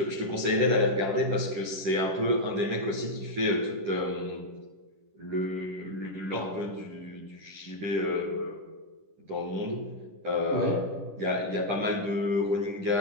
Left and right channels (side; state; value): left; late; 10 ms